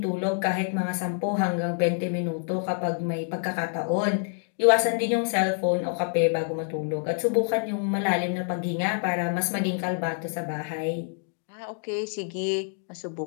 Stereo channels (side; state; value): right; silent; 60 dB below the other